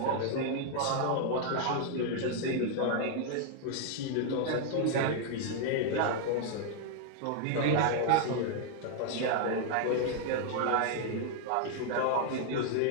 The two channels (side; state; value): both; different; correlation 0.00